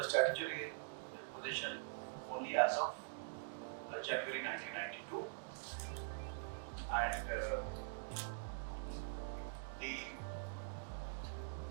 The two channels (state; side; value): silent; left; digital silence